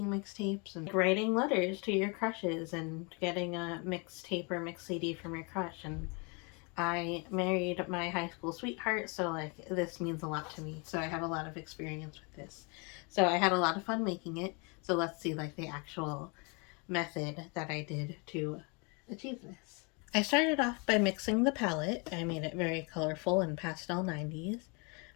mixtapes and writing letters to your crushes and getting a mixtape or mix CD from your crush. And I married my high school sweetheart, so like this means a lot to me. So I have a lot of experience with this. So I had a lot of fun making it. So let's see like the actual method that I did to achieve this. I started off by mixing the palette. I made it very colorful and pastel 90s.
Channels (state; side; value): quieter; right; 32.2 dB